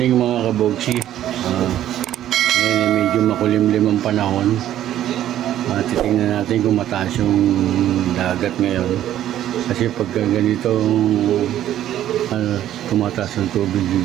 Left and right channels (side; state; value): left; quieter; 12.1 dB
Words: mga kabogsi. Ngayon medyo makulimlim ang panahon. Titingnan natin kung mataas yung dagat ngayon. Kasi pagka ganito tumataas ang tubig